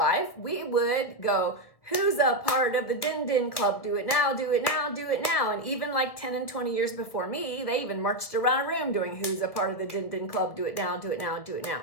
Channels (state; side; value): late; right; 1.6 ms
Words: we would go, who's a part of the Din Din Club? Do it now, do it now, do it now. And even like 10 and 20 years before me, they even marched around a room doing who's a part of the Din Din Club? Do it now, do it now, do it now.